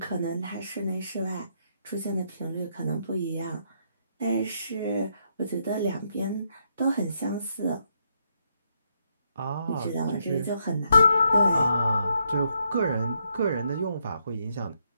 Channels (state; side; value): inverted; both; correlation -0.76